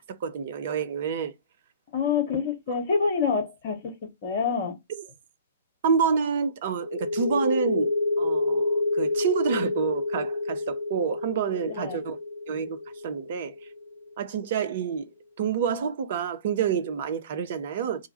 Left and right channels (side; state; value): both; inverted; correlation -0.51